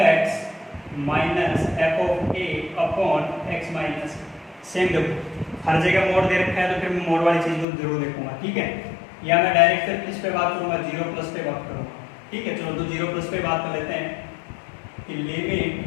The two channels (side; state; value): right; drops out; at 7.7 s